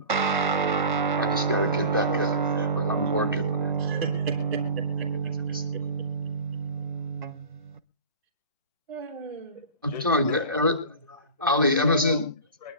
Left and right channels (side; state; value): both; inverted; correlation -0.37